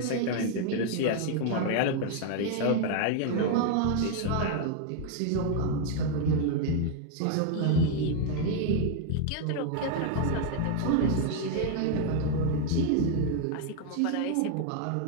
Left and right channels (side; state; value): both; different; correlation 0.00